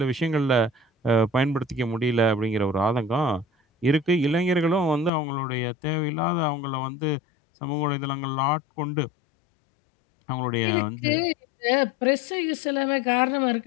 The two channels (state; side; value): drops out; right; at 5.1 s